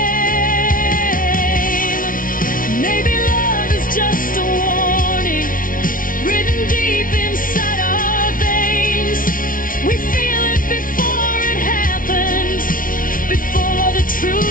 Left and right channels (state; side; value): late; right; 0.40 ms